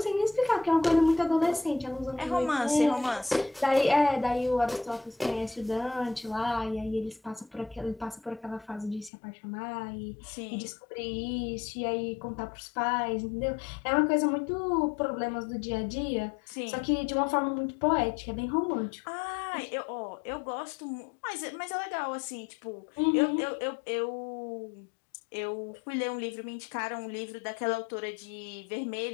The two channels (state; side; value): drops out; right; at 9.1 s